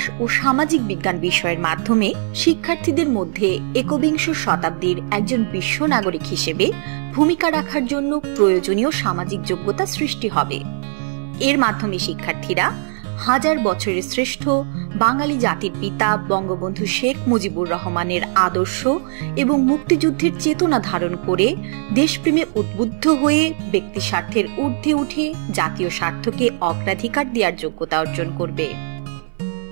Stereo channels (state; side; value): silent; left; 61 dB below the other